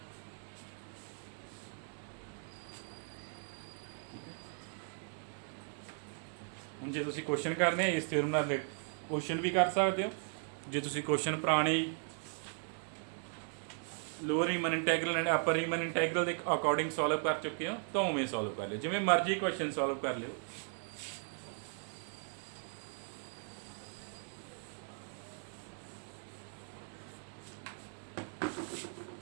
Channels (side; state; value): left; silent; 53 dB below the other